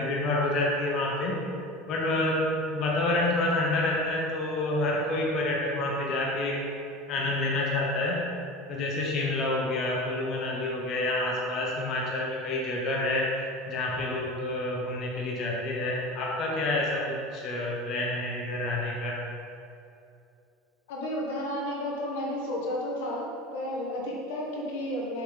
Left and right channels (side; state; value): both; normal; correlation 0.32